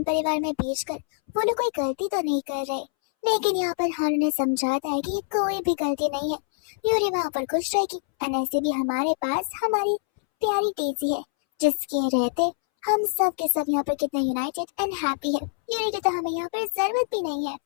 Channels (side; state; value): right; silent; 62 dB below the other